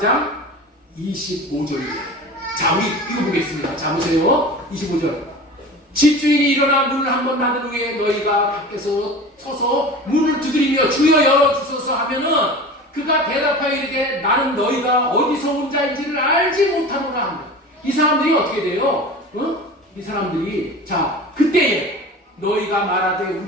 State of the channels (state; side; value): normal; both; correlation 0.35